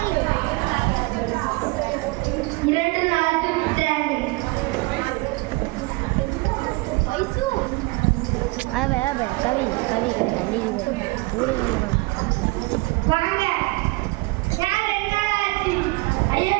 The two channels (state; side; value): quieter; left; 24.4 dB